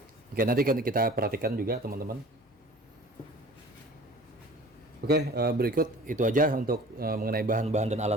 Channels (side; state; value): both; normal; correlation 0.44